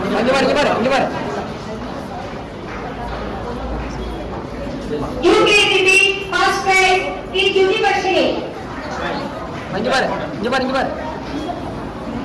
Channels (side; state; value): both; identical; correlation 1.00